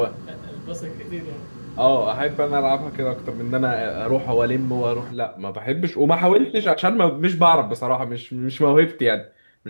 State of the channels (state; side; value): inverted; both; correlation -1.00